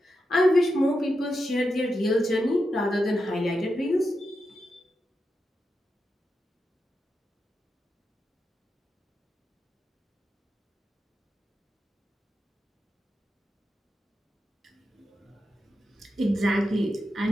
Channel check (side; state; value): both; normal; correlation 0.88